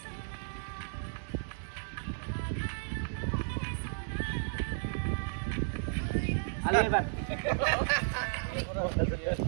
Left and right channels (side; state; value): left; silent; digital silence